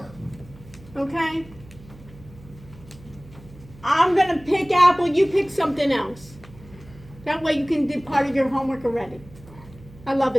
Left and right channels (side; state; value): right; noise; hum, 21 dB below the sound